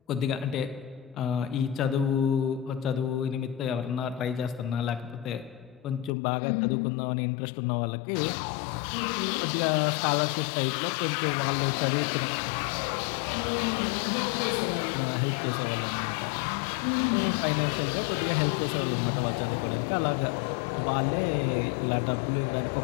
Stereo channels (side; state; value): right; drops out; at 6.1 s